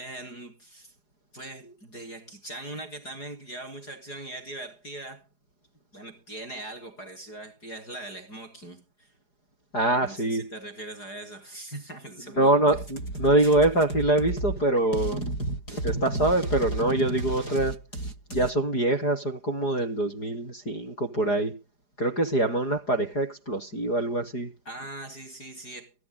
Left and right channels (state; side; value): late; right; 4.9 ms